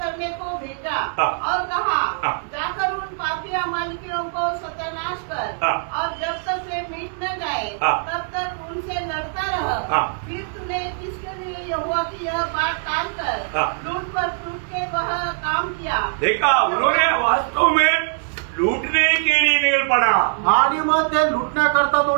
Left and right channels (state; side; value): silent; left; 62 dB below the other